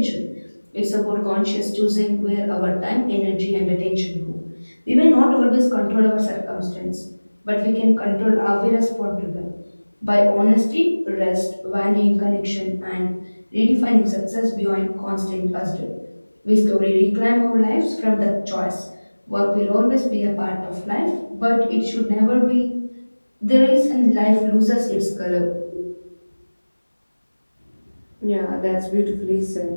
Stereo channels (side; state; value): both; inverted; correlation -1.00